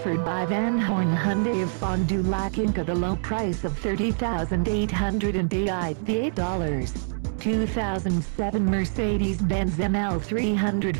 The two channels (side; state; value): left; silent; 62 dB below the other